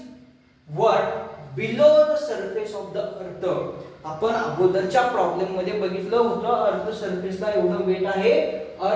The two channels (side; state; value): both; identical; correlation 1.00